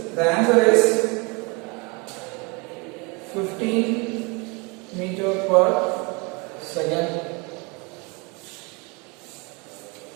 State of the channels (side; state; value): left; quieter; 29.3 dB